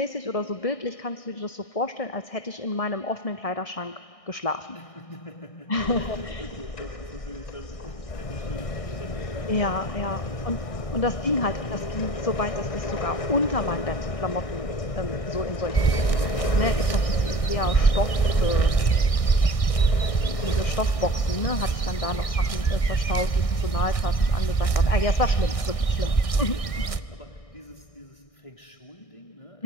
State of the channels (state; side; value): late; right; 1.6 ms